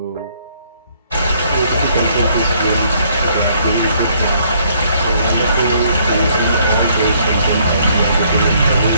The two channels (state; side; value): inverted; both; correlation -0.66